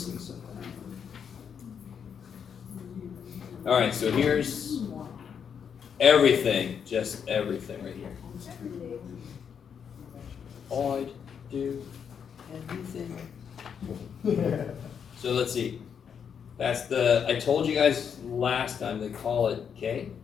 something. All right, so here's everything, just everything right here. All I do, everything. So let's see. That's the, I told you guys last time they call it K.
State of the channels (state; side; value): quieter; right; 7.4 dB